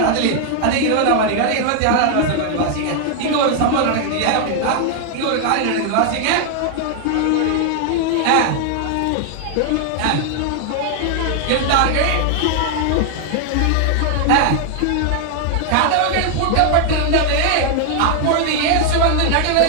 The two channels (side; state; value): both; different; correlation 0.00